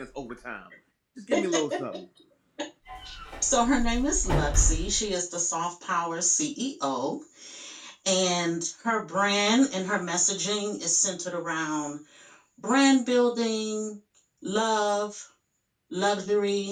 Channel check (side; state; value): both; identical; correlation 1.00